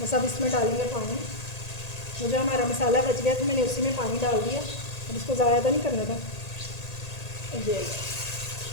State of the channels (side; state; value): right; late; 1.8 ms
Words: बस अब इसमें डालेंगे पानी। वो जो हमारा मसाला बच गया था मैंने उसी में पानी डाल दिया। अब इसको ज़्यादा तो नहीं करना था।